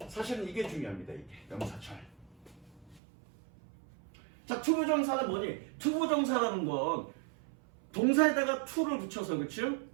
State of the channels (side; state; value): left; drops out; at 3.0 s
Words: 사실은 이게 중요합니다. 이게 명사절. 자, 투부정사는 뭐니? 투부정사라는 건 동사에다가 to를 붙여서, 그치?